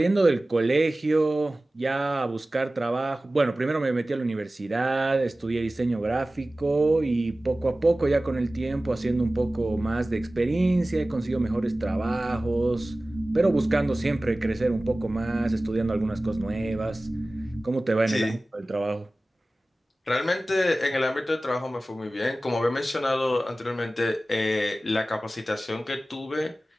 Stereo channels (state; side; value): normal; both; correlation 0.97